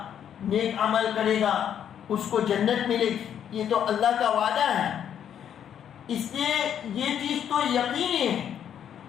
نیک عمل کرے گا، اس کو جنت ملے گی. یہ تو اللہ کا وعدہ ہے، اس لیے یہ چیز تو یقینی ہے.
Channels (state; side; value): quieter; right; 9.2 dB